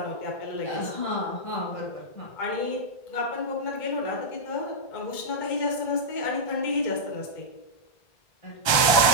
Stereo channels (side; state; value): right; late; 1.3 ms